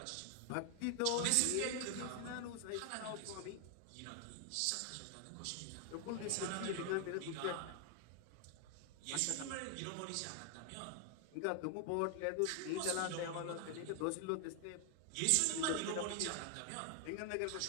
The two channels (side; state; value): both; different; correlation 0.00